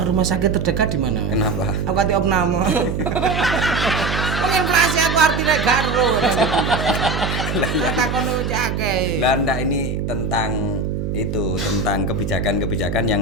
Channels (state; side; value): noise; right; hum, 2 dB below the sound